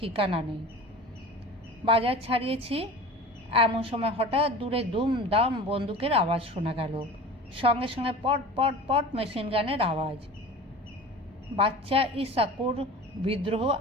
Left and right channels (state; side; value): normal; both; correlation 0.37